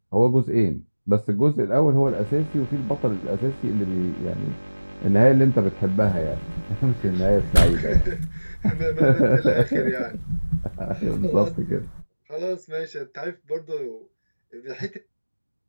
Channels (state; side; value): inverted; both; correlation -1.00